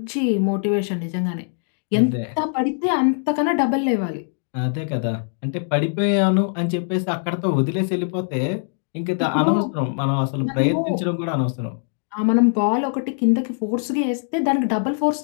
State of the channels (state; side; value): silent; right; digital silence